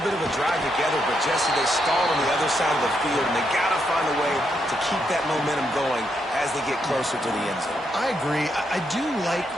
bit of a drive together, but Jesse, they stalled on the other side of the field, and they got to find a way to keep that momentum going as they get closer to the end zone. I agree. I do like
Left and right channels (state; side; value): normal; both; correlation 0.79